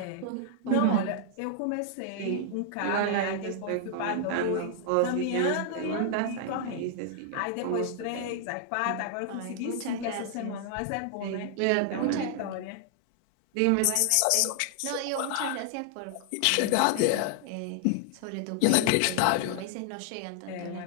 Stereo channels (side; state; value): both; different; correlation 0.00